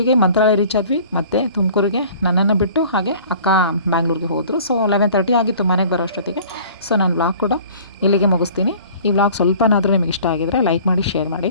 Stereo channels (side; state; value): both; inverted; correlation -0.48